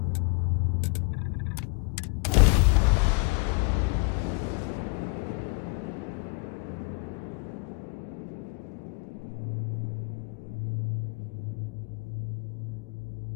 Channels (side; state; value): right; quieter; 32.4 dB